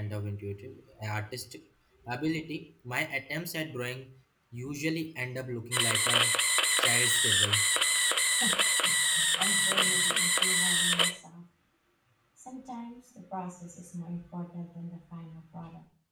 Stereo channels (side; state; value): both; identical; correlation 1.00